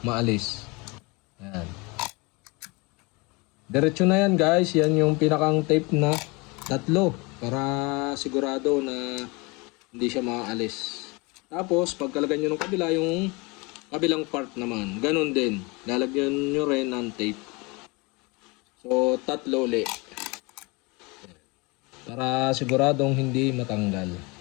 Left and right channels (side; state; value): right; quieter; 27.0 dB